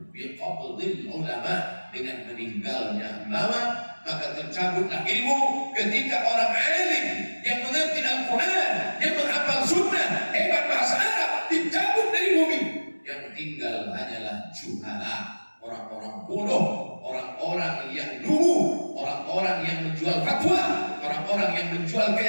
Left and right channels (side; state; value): both; inverted; correlation -1.00